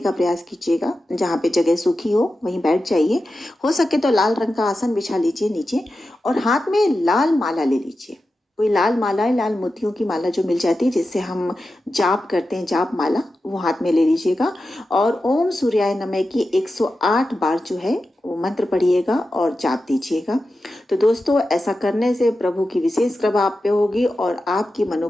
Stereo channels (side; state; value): both; normal; correlation 0.92